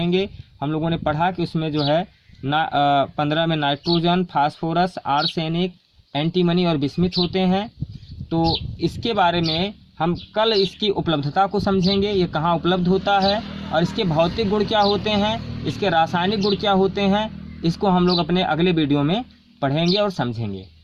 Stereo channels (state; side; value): identical; both; correlation 1.00